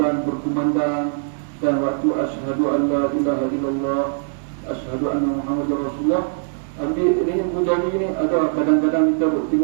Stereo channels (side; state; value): left; silent; digital silence